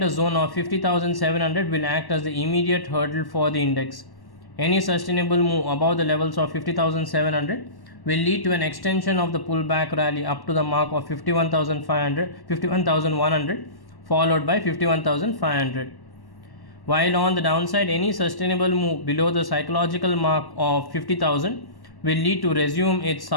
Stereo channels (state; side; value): late; right; 1.1 ms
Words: zone of 50,700 will act as the immediate hurdle for the index. Any sustainable move above the levels of 50,700 will lead to an extension of the pullback rally up to the mark of 51,100, followed by 51,500. While on the downside, any sustainable move below the psychological mark of 50,000 will lead to resume its